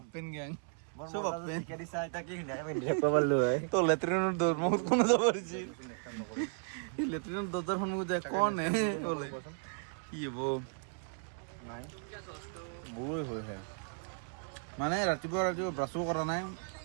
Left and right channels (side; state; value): left; silent; 54 dB below the other